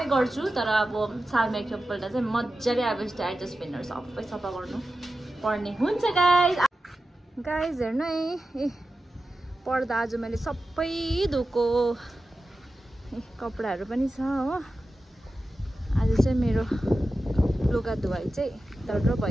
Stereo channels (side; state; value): both; normal; correlation 0.93